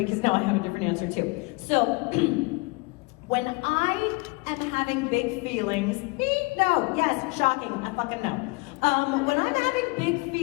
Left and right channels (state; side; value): quieter; right; 26.7 dB